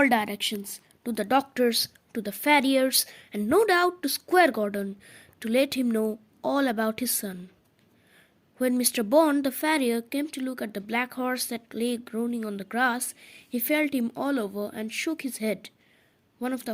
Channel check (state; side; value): identical; both; correlation 1.00